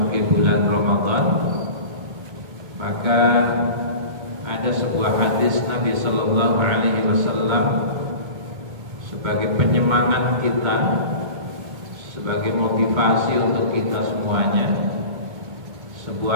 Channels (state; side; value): late; left; 2.2 ms